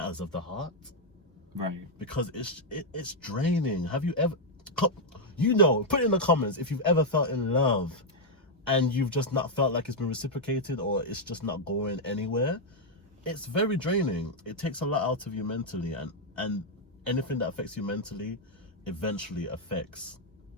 of the heart. Right. Because it's draining. Have you ever, you know, put in the comments if you've ever felt in love and you've just not felt like it's been reciprocated or it's just not going anywhere. It's very draining. It takes a lot out of you mentally, and anything that affects you mentally eventually affects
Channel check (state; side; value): normal; both; correlation -0.02